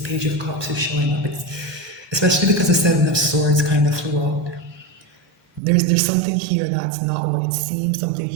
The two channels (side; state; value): left; drops out; at 5.6 s